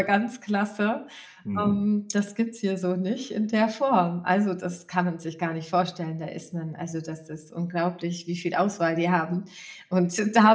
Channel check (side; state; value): both; identical; correlation 1.00